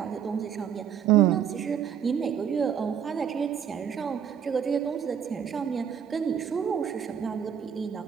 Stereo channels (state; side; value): quieter; left; 8.2 dB